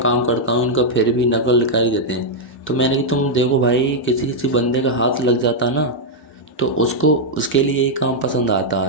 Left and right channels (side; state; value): both; normal; correlation -0.03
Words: करता हूँ इनका फिर भी नकल निकाल ही देते हैं। तो मैंने कि तुम देखो भाई किसी किसी बंदे का हाथ लग जाता ना तो उसको उसके लिए यही काम पसंद आता